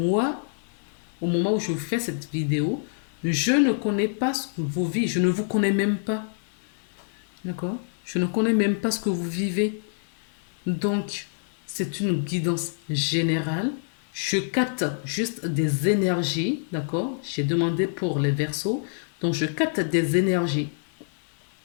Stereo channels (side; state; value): right; silent; digital silence